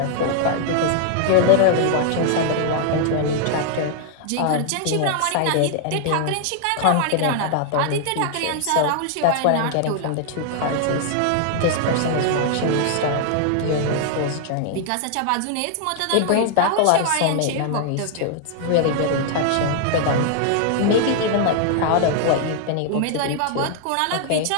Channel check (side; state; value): both; different; correlation 0.00